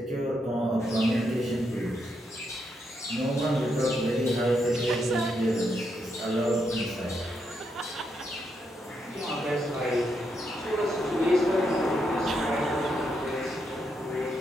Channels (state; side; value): normal; both; correlation 0.80